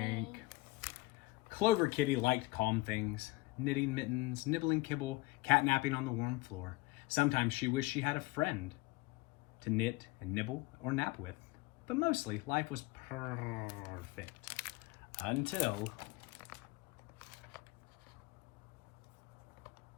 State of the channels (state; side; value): quieter; right; 22.1 dB